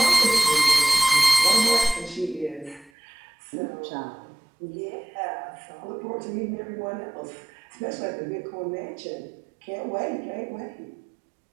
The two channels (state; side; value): drops out; left; at 2.9 s